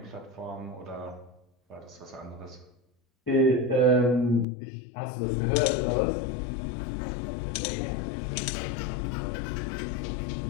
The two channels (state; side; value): drops out; right; at 4.5 s